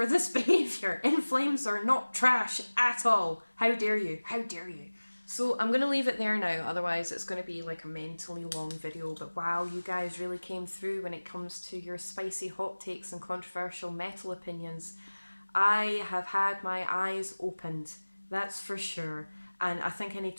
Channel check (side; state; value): both; inverted; correlation -1.00